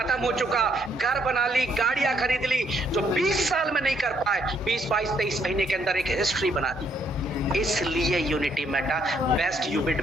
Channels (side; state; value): both; normal; correlation 0.71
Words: हो चुका, घर बना ली, गाड़ियां खरीद ली, जो 20 साल में नहीं कर पाए, 20, 22, 23 महीने के अंदर एक हिस्ट्री बना दी। इसलिए यूनिटी मेटा बेस्ट यूबिट